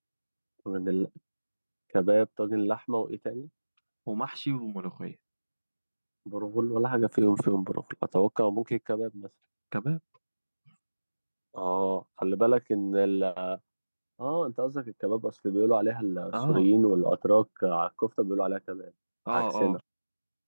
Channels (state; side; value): inverted; both; correlation -1.00